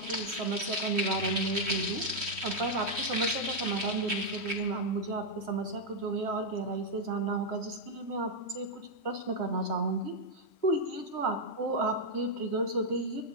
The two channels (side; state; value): right; late; 3.1 ms